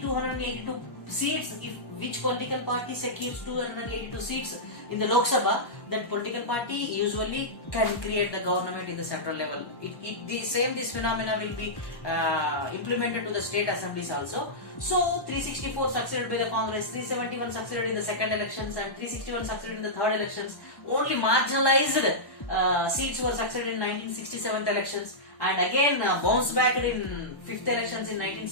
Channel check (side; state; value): right; late; 1.1 ms